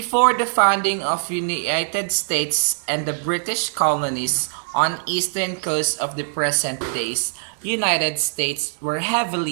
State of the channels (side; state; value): left; silent; digital silence